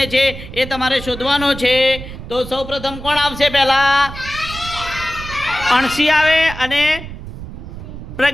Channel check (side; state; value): right; noise; rumble, 11 dB below the sound